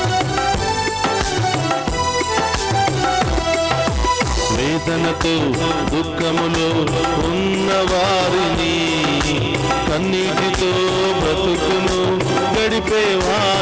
వేదనతో దుఃఖములో ఉన్నవారిని, కన్నీటితో బ్రతుకును గడిపే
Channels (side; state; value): both; identical; correlation 1.00